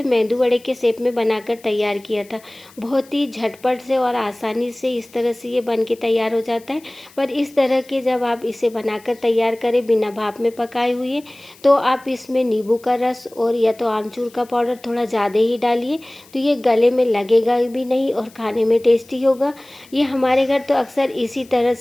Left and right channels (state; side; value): noise; left; hiss, 26 dB below the sound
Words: मेंदू वड़े के शेप में बनाकर तैयार किया था। बहुत ही झटपट से और आसानी से इस तरह से ये बन के तैयार हो जाता है। पर इस तरह के जब आप इसे बनाकर तैयार करें बिना भाप में पकाए हुए, तो आप इसमें नींबू का रस और या तो आमचूर का पाउडर थोड़ा ज़्यादा ही डालिए, तो ये गले में लगेगा भी नहीं और खाने में टेस्टी होगा। ये हमारे घर तो अक्सर इसी तरह